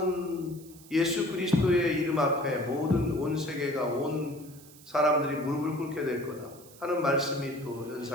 예수 그리스도의 이름 앞에 모든 온 세계가, 온 사람들이 무릎을 꿇게 될 거다 하는 말씀이 또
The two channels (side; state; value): right; noise; hiss, 22 dB below the sound